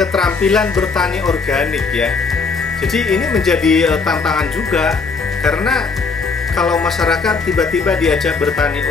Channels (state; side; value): quieter; right; 4.6 dB